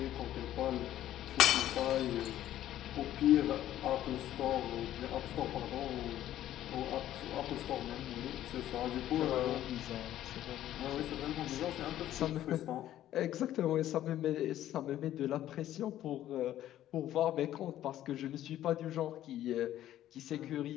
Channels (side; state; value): right; quieter; 12.7 dB